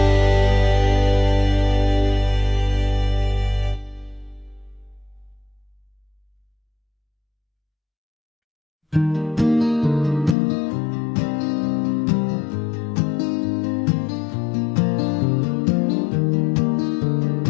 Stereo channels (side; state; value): right; drops out; at 10.4 s